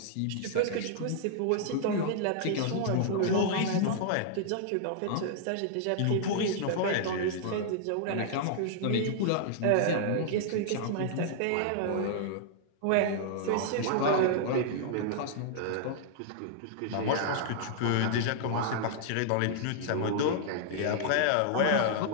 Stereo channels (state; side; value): different; both; correlation -0.01